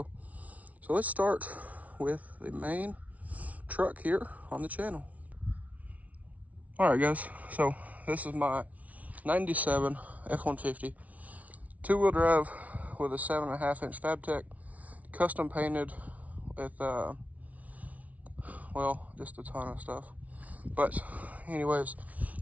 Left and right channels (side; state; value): left; late; 0.069 ms